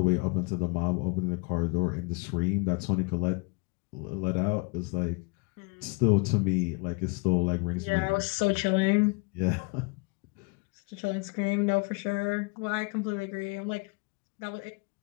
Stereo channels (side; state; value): right; quieter; 30.3 dB